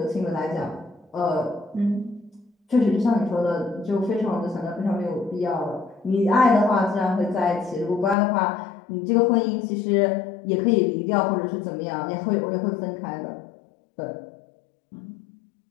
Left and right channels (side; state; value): right; drops out; at 8.2 s